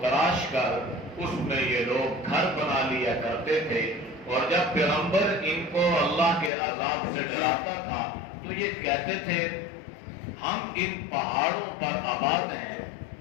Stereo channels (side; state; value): right; drops out; at 6.5 s